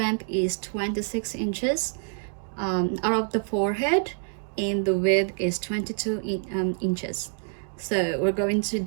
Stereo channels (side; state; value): left; silent; digital silence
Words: is 26 inches out of the forehead, and the width is 22 inches. So we're going to